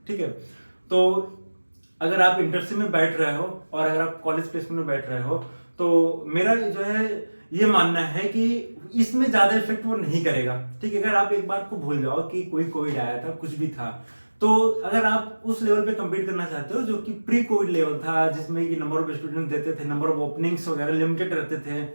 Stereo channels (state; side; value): inverted; both; correlation -1.00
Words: ठीक है, तो अगर आप इंटर्नशिप में बैठ रहे हो और अगर आप कॉलेज प्लेसमेंट में बैठ रहे हो तो मेरा जो है ये मानना है कि इसमें ज्यादा इफेक्ट वो नहीं करेगा. ठीक है, अगर आप एक बात को भूल जाओ कि कोई कोविड आया था, कुछ भी था, तो अगर आप उस लेवल पे कम्पीट करना चाहते हो जो कि प्री कोविड लेवल था जिसमें कि नंबर ऑफ स्टूडेंट देते थे, नंबर ऑफ ओपनिंग्स वगैरह लिमिटेड रहते थे,